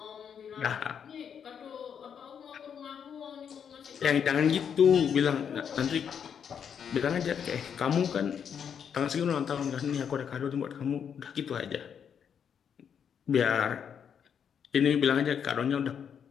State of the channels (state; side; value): quieter; right; 7.7 dB